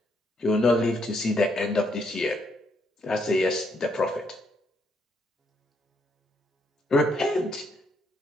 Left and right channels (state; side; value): normal; both; correlation 0.74